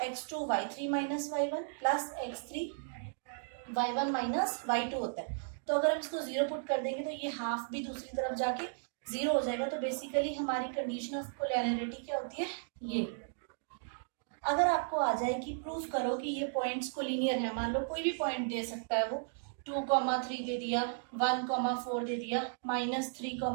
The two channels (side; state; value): left; silent; digital silence